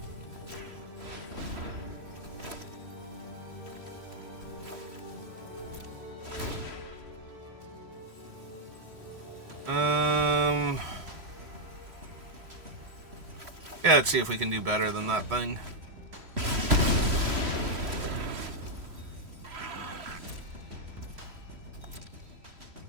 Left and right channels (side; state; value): left; late; 3.1 ms